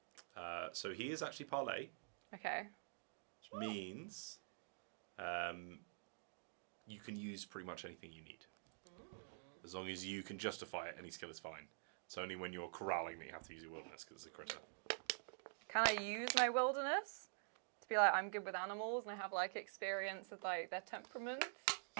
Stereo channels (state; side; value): silent; left; digital silence